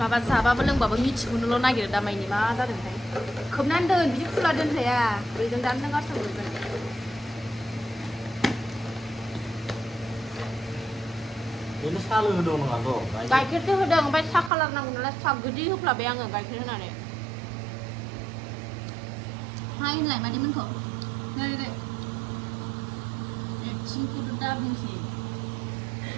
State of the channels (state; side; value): drops out; left; at 14.5 s